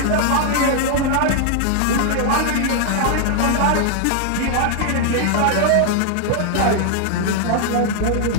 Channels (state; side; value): different; both; correlation 0.00